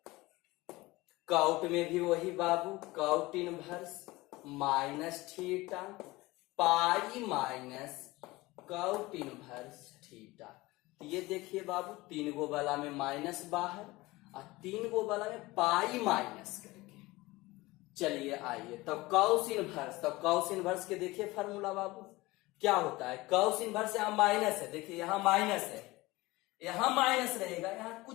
Cot में भी वही बाबू, cot inverse minus theta, pi minus cot inverse theta. तो ये देखिए बाबू, 3 गो वाला में माइनस बाहर और 3 गो वाला में पाई माइनस करके। चलिए आइए तब कॉस इनवर्स, तब कॉस इनवर्स के देखिए फार्मूला बाबू क्या होता है। कॉस इनवर्स यहाँ माइनस है, देखिए यहाँ माइनस है, यहाँ माइनस रहेगा, यहाँ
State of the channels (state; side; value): quieter; right; 20.6 dB